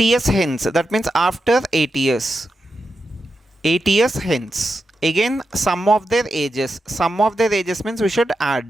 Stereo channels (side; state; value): both; normal; correlation 0.88